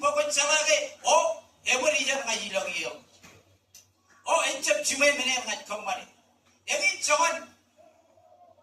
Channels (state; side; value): identical; both; correlation 1.00